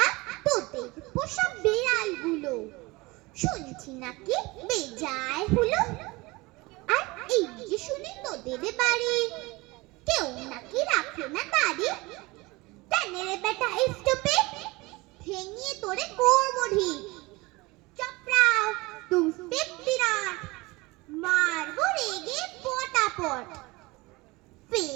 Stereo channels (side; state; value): left; quieter; 23.1 dB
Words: আর তোদের পোষা বিড়ালগুলো শুনছি নাকি বেজায় হলো। আর এই যে শুনি তোদের বাড়ি কেউ নাকি রাখে না দাড়ি। কেনে রে বেটা স্টপে, ভেঙিয়ে তোরে করবো ঢিক। চপড়াও তুম বিরাট, মারবো রেগে পটাপট।